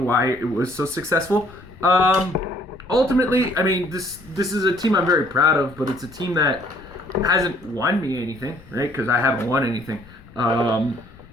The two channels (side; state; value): left; noise; rumble, 22 dB below the sound